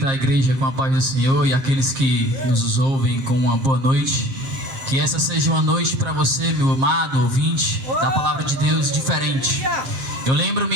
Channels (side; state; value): left; late; 7.5 ms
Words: a igreja com a paz do Senhor e aqueles que nos ouvem com uma boa noite. Que essa seja uma noite para você, meu amado ouvinte da Palavra de Deus, diferente. Eu